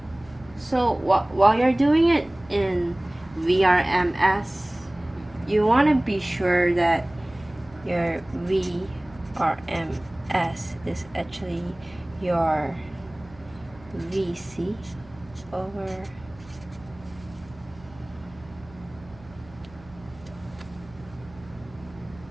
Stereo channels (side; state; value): right; noise; hum, 22 dB below the sound